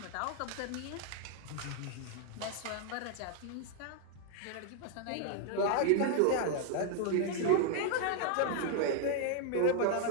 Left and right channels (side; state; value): both; different; correlation 0.00